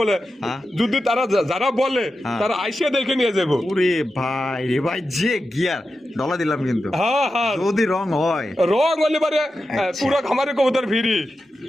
বলে হ্যাঁ? যদি তারা যারা বলে তারা আইসে দেখে নিয়ে যাবো। ওরে ভাই রে ভাই যে গিয়ার ডলা দিলাম কিন্তু হ্যাঁ হ্যাঁ যদি রং হয় রং হলে পারে আচ্ছা। পুরো খামারে কবুতর ভিড়ি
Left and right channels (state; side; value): normal; both; correlation 0.91